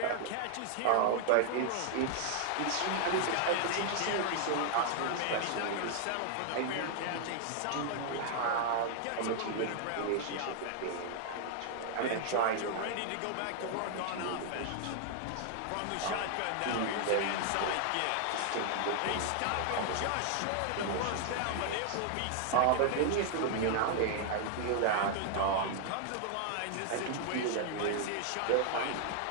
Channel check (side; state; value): both; different; correlation 0.00